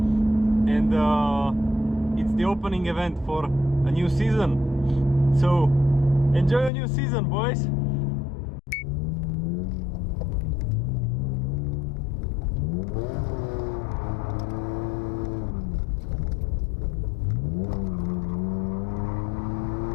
and it's the opening event for a new season. So enjoy a new season, boys.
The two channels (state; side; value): drops out; right; at 6.7 s